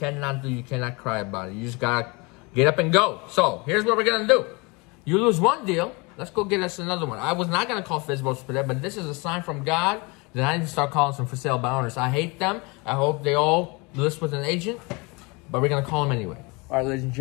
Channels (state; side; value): quieter; right; 27.6 dB